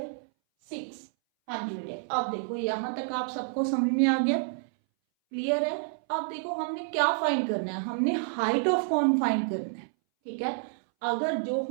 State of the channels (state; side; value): silent; left; 59 dB below the other